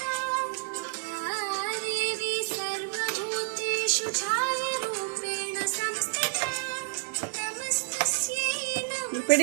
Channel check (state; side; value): silent; left; 58 dB below the other